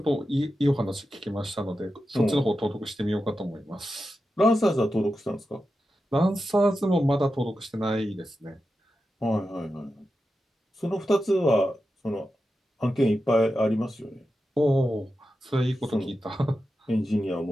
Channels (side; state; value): both; normal; correlation 0.90